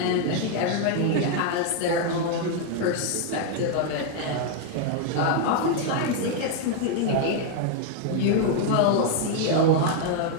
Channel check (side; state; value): both; different; correlation 0.00